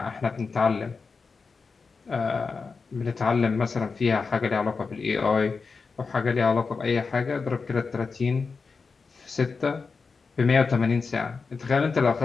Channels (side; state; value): right; quieter; 4.8 dB